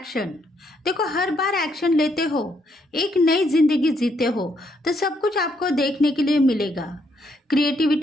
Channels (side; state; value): both; normal; correlation 0.74